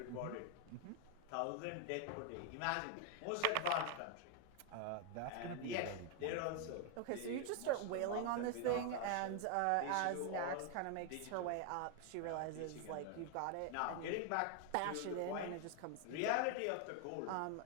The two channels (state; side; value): different; both; correlation 0.01